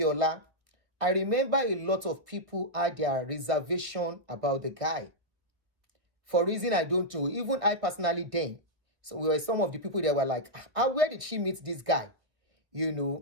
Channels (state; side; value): late; left; 1.2 ms